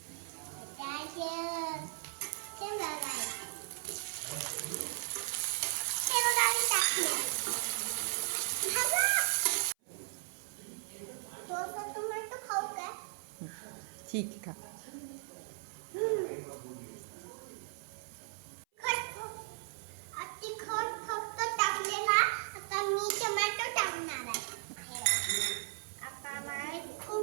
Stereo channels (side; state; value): left; silent; 53 dB below the other